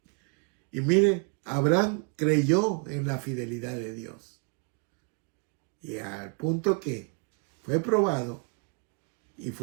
Y mire, Abraham creyó en la fidelidad de Dios. Y al punto que fue probado y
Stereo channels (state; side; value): quieter; left; 35.1 dB